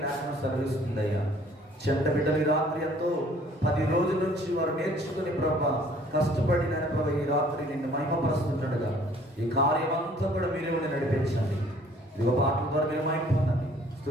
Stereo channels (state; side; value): normal; both; correlation 0.56